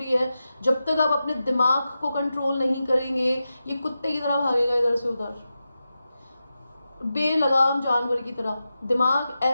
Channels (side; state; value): both; inverted; correlation -0.91